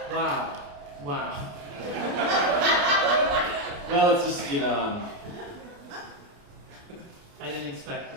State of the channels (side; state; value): left; late; 28 ms